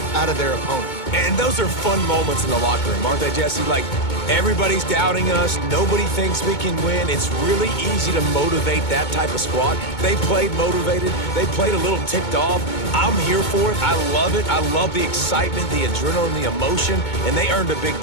out of their opponent. And those are fun moments in the locker room, aren't they, Jesse? Like, everybody's doubting us. Nobody thinks we can win. It's really easy to motivate that type of squad. They played motivated. They played a little ticked off. I'm here for it. I love it. I love the excitement, the adrenaline, the emotion, and they earned a big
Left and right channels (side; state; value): right; late; 2.2 ms